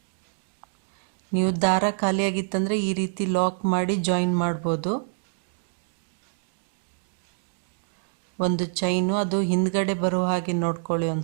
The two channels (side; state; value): left; silent; 61 dB below the other